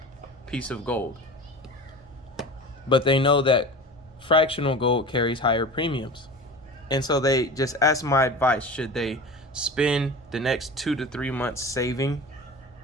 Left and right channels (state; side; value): normal; both; correlation 0.34